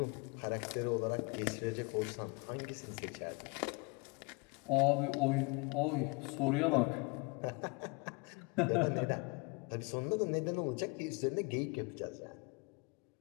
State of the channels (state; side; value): quieter; right; 29.3 dB